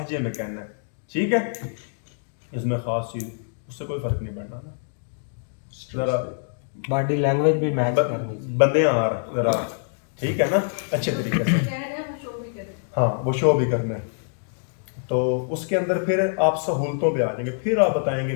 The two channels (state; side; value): silent; right; digital silence